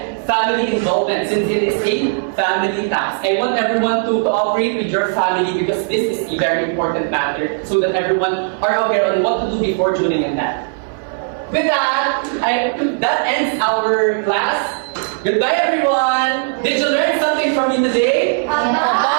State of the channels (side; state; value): left; silent; 58 dB below the other